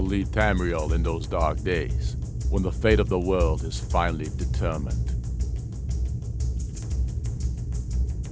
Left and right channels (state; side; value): identical; both; correlation 1.00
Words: lead Tamriel in those dark days, when the fate of the world is finally determined.